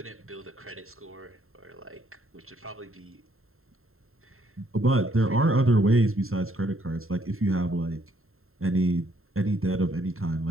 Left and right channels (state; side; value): late; left; 0.62 ms